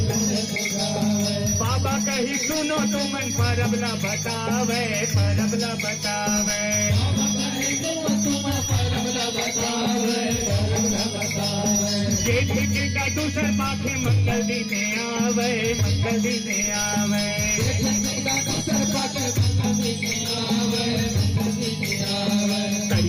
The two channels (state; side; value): identical; both; correlation 1.00